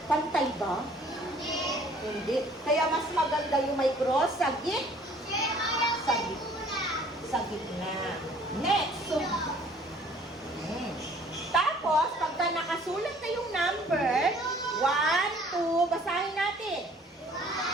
pantay ba? Hindi. Kaya mas maganda yung may cross sa gitna. Next. So, tapos, pagka nakasulat na yung number, 1, 2, basahin natin.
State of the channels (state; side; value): normal; both; correlation 0.55